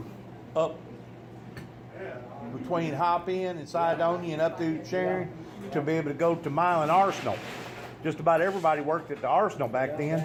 up between Hop-In and Sidonia and up through Sharon to be able to go to Milan Arsenal. Just about everybody worked at the Arsenal back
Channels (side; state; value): both; identical; correlation 1.00